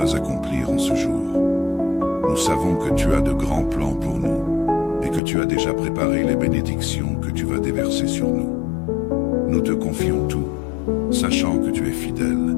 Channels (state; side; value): drops out; right; at 5.2 s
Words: accomplir en ce jour. Nous savons que tu as de grands plans pour nous et que tu as déjà préparé les bénédictions que tu vas déverser sur nous. Nous te confions tout, sachant que tu es fidèle